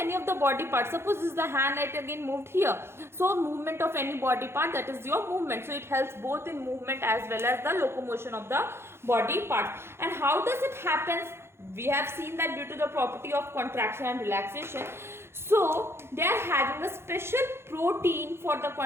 of the body parts. Suppose this is the hand, it again moved here. So movement of any body part, that is your movement. So it helps both in movement as well as the locomotion of the body parts. And how does it happen? We have seen that due to the property of contraction and relaxation. So they are having a special protein for the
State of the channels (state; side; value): late; left; 0.12 ms